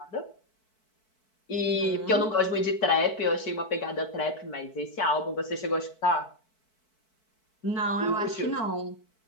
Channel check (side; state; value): right; late; 4.6 ms